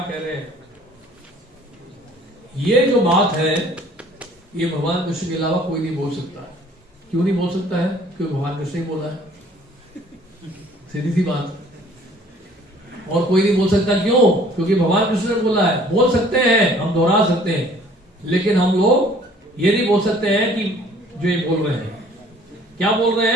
कह रहे हैं। ये जो बात है ये भगवान कृष्ण के अलावा कोई नहीं बोल सकता। क्यों नहीं बोल सकता है? क्योंकि भगवान कृष्ण ही बोला है, सीधी सी बात। और कोई नहीं बोल सकता, क्यों? क्योंकि भगवान कृष्ण ने बोला है। बोल सकते हैं, हम दोहरा सकते हैं, लेकिन हम लोग ये नहीं बोल सकते हैं कि जो ये बोल रहे हैं। क्या बोल रहे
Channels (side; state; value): both; normal; correlation 0.55